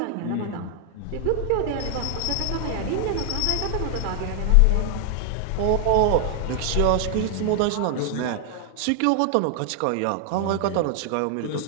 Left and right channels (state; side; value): different; both; correlation 0.00